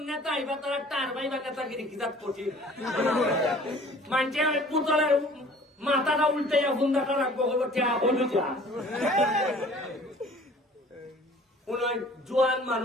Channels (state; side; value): normal; both; correlation 0.49